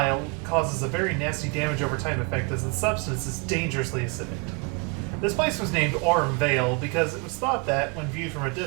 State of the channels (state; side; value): quieter; left; 32.4 dB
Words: causes a very nasty damage over time effect as the substance is dangerously acidic. This place was named Aurum Vale because it was thought that, when viewed from a